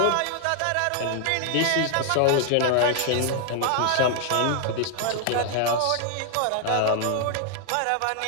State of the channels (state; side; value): different; both; correlation 0.00